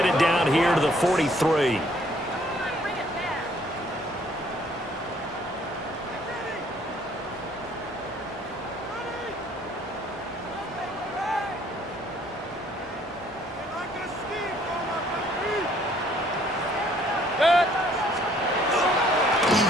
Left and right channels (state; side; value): normal; both; correlation 0.62